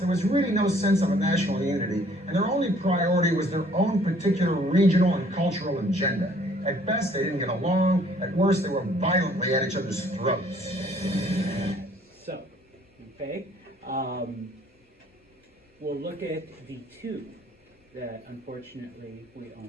was really no sense of a national unity, and their only priority was their own particular regional and cultural agenda. At best, they didn't get along. At worst, they were violently at each other's throats. So, okay, we'll look at the two that unfortunately we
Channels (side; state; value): both; normal; correlation 0.59